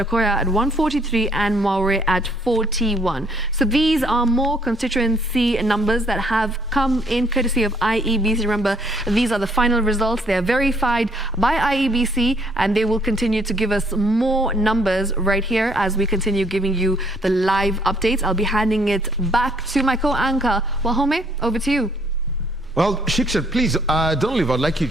at 143, and Maure at 41. So these are more constituency numbers that have come in courtesy of IEBC. Remember, these are the final results. They are verified by IEBC, and they will continue to give us more numbers right here as we continue giving you the live updates. I'll be handing it back to my co-anchor, Wahome. Over to you. Well, Shiksha, please don't leave. I'd like you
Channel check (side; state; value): both; normal; correlation 0.66